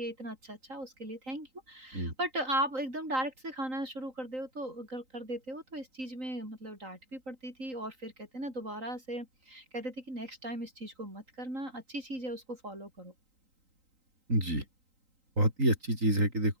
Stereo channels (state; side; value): late; left; 3.9 ms